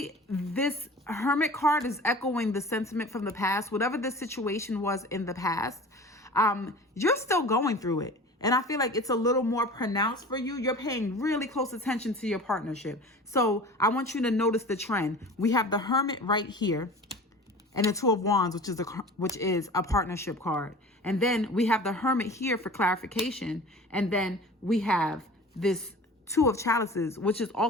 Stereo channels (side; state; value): both; normal; correlation 0.39